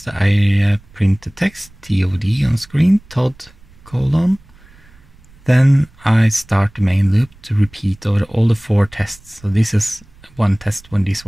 I print the text TOD on screen, Todd : then I start the main loop to repeat over all the 4 tests. So this is one test when this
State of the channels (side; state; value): right; noise; rumble, 26 dB below the sound